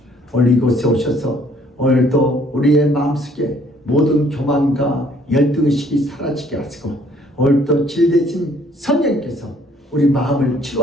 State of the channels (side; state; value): both; normal; correlation 0.61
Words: 오늘 이곳에 오셔서 오늘도 우리의 마음속에 모든 교만과 열등의식이 사라지게 하시고 오늘도 진대신 성령께서 우리 마음을